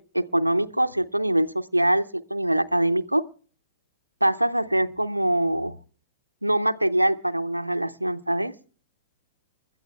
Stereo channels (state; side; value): inverted; both; correlation -0.99